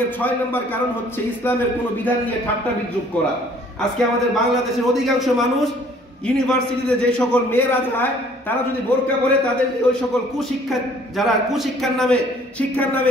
6 নম্বর কারণ হচ্ছে ইসলামের কোনো বিধান নিয়ে ঠাট্টা বিদ্রূপ করা। আজকে আমাদের বাংলাদেশের অধিকাংশ মানুষ ইউনিভার্সিটিতে যে সকল মেয়েরা যায়, তারা যদি বোরকা পরে, তাদের ওই সকল কুশিক্ষা, যারা শিক্ষার নামে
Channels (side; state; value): both; normal; correlation 0.57